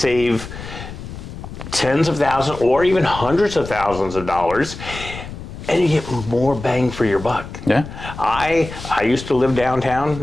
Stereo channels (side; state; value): left; noise; rumble, 11 dB below the sound